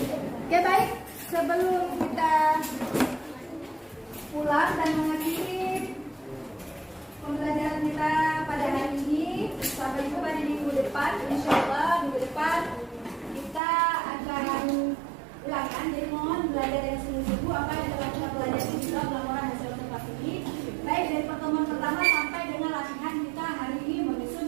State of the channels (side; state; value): left; drops out; at 13.6 s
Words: Oke, baik. Sebelum kita pulang dan mengakhiri pembelajaran kita pada hari ini, sampai jumpa di minggu depan. Insya Allah minggu depan kita akan ulangan. Jadi mohon belajar yang sungguh-sungguh apa yang telah kita pelajari di dalam laporan hasil observasi ini. Baik dari pertemuan pertama sampai dengan latihan kita hari ini